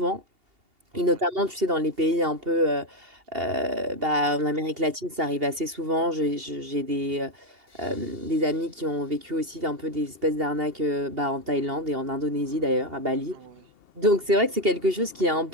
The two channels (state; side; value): late; left; 2.8 ms